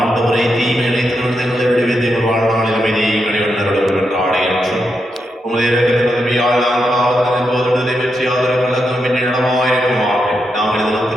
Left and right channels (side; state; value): both; normal; correlation 0.84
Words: தீமையை திருவிழங்களை விடுவித்து எங்கள் வாழ்நாளில் அமைதியை கடைவண்ணருடன் என்ற ஆடை என்றும் உமது இறக்கத்தின் உதவியால் நாம் காவல் போதுள்ளதை வெற்றி ஆதரவு கலக்கும் என்று நடமாயிருக்குமாக நாங்கள்